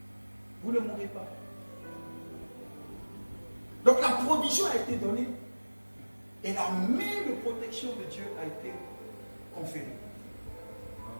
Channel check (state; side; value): inverted; both; correlation -1.00